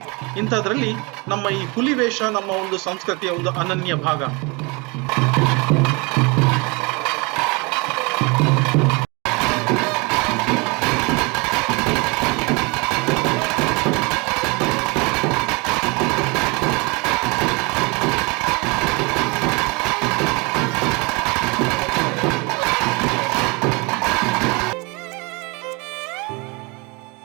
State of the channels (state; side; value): quieter; left; 28.2 dB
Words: ಇಂಥದ್ರಲ್ಲಿ ನಮ್ಮ ಈ ಹುಲಿ ವೇಷ ನಮ್ಮ ಒಂದು ಸಂಸ್ಕೃತಿಯ ಒಂದು ಅನನ್ಯ ಭಾಗ.